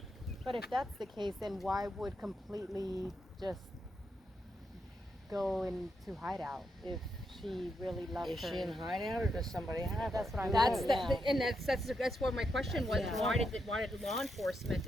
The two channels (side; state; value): both; normal; correlation 0.82